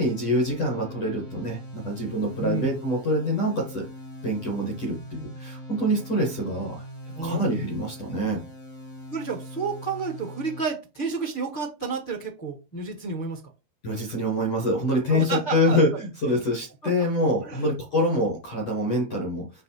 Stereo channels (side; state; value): right; late; 10 ms